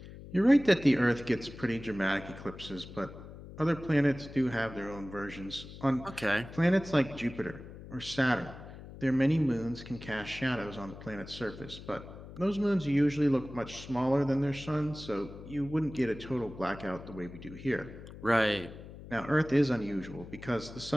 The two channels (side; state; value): left; noise; hum, 15 dB below the sound